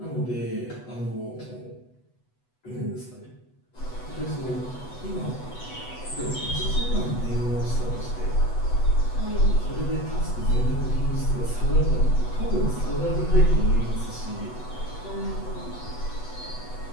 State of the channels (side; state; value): right; late; 8.1 ms